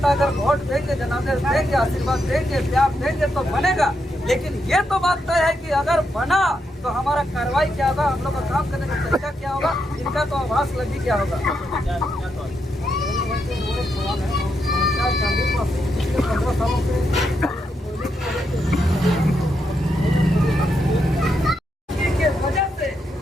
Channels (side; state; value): both; normal; correlation 0.82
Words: अगर वोट देंगे, जनादेश देंगे, आशीर्वाद देंगे, प्यार देंगे तो बनेगा। लेकिन ये तो बात तय है कि अगर बना तो हमारा कार्रवाई क्या होगा, हम लोग का काम करने का तरीका क्या होगा, इनका तो आभास लगी क्या होगा। 15 सालों से के वजह से